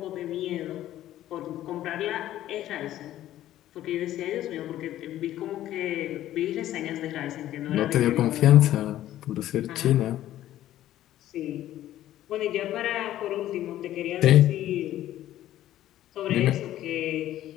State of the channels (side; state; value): right; quieter; 13.2 dB